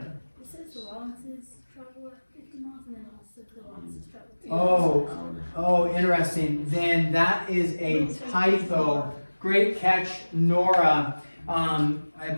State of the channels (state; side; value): inverted; both; correlation -1.00